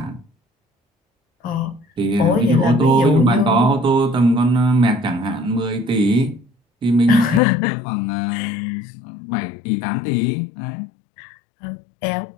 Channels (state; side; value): drops out; right; at 7.4 s